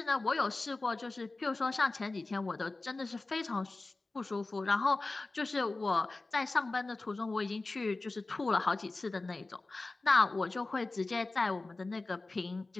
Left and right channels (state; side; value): quieter; right; 3.3 dB